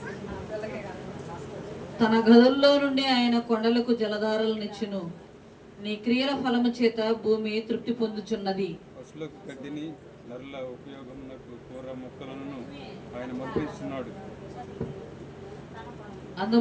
తన గదుల్లో నుండి ఆయన కొండలకు జలధారలనిచ్చును. నీ క్రియల ఫలము చేత భూమి తృప్తి పొందుచున్నది. పశువులకు గడ్డిని, నరుల ఉపయోగమునకు కూర మొక్కలను ఆయన మర్పిస్తున్నాడు.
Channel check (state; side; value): identical; both; correlation 1.00